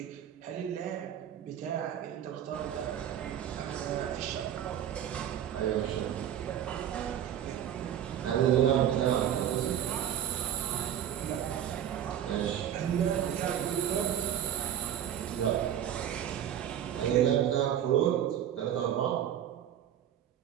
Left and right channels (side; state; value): left; quieter; 10.3 dB